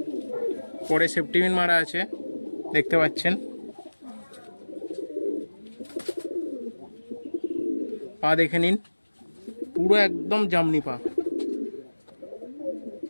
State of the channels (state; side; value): inverted; both; correlation -1.00